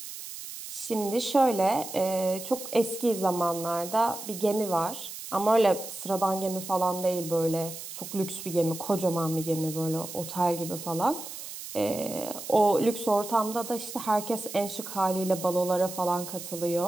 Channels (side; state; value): right; noise; hiss, 10 dB below the sound